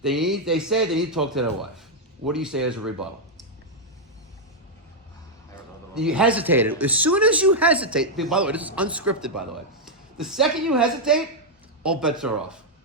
they say they need to talk to their wife. What do you say as a rebuttal? You hesitated. As soon as you hesitate, by the way, this is unscripted, by the way. The second you hesitate, all bets are off.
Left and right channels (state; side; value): normal; both; correlation -0.02